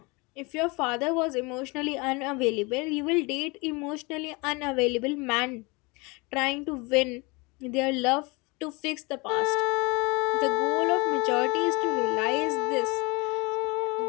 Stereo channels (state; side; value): quieter; right; 26.9 dB